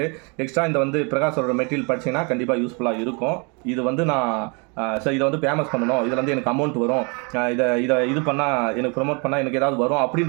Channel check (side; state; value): left; quieter; 32.8 dB